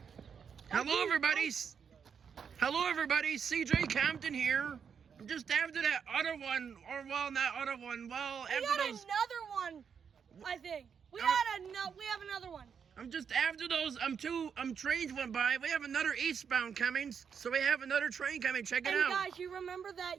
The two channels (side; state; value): left; quieter; 6.9 dB